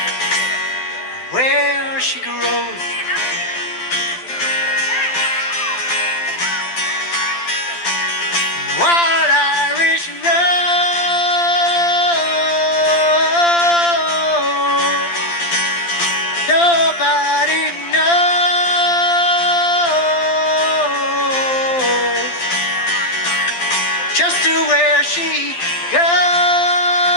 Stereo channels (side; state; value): right; late; 12 ms